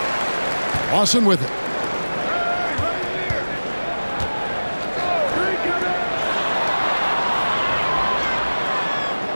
Lawson with it.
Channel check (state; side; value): inverted; both; correlation -1.00